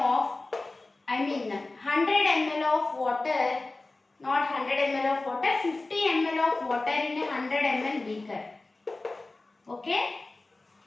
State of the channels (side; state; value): right; quieter; 3.2 dB